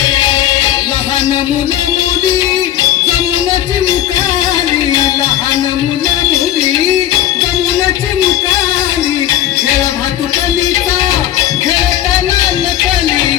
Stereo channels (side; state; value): right; quieter; 12.4 dB